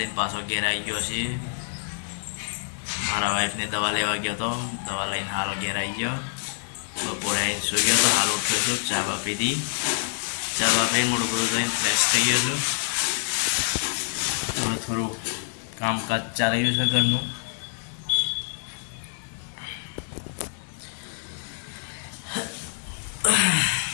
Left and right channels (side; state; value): right; silent; digital silence